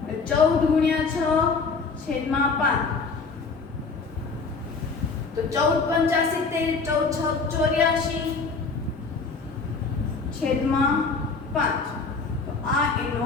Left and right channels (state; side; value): quieter; right; 4.5 dB